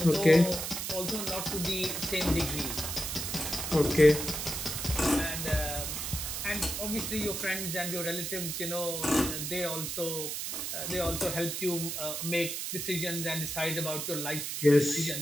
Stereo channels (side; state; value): right; noise; hiss, 4 dB below the sound